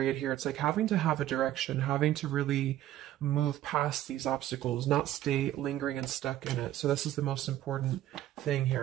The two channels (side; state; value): left; quieter; 13.2 dB